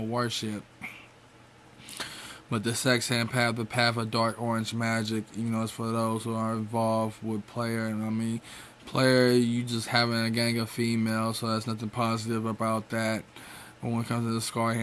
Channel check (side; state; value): both; identical; correlation 1.00